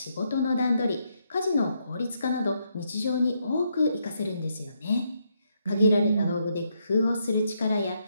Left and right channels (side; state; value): both; inverted; correlation -0.77